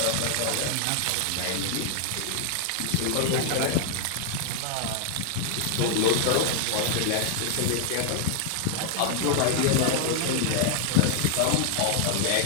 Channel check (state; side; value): different; both; correlation 0.00